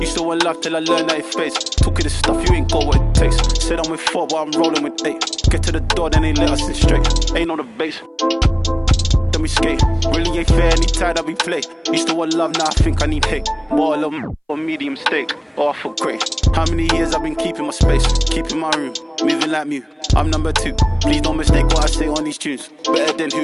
Used to want love till I learned that it fades. Talking this stuff, you ain't got what it takes. Said I'm with 4, but I'm rolling with 8. Get to the door, then they let us in straight. Ain't on the base. Then me skate. Really ain't fair, any tired I be play. Used to want love, now I think I need hate. More love or medium steak, or I feel great. How many years I've been keeping my space, keeping my room, moving like Mew. I'm number 2. Please don't mistake what I say on these tunes. Better than who,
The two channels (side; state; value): both; identical; correlation 1.00